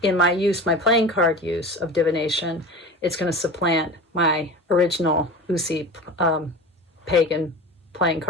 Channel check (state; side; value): normal; both; correlation 0.33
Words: in my playing card use of divination, it's going to supplant my original Uusi Pagan playing